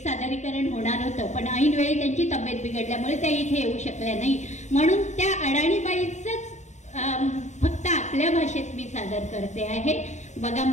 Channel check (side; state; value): right; late; 0.34 ms